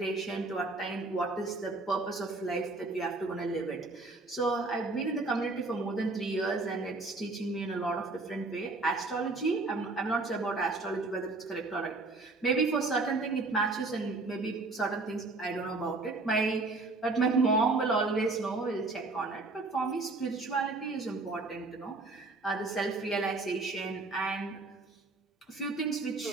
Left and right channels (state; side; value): quieter; left; 3.4 dB